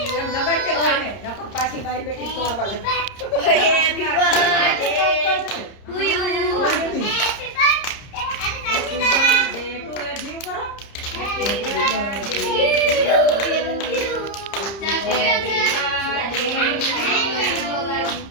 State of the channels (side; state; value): right; late; 30 ms